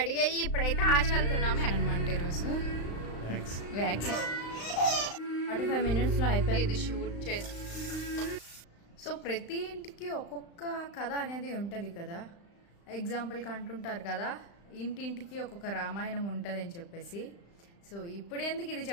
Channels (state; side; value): late; right; 35 ms